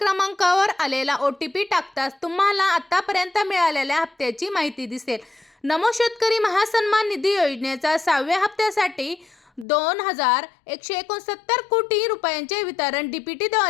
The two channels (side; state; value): right; drops out; at 9.7 s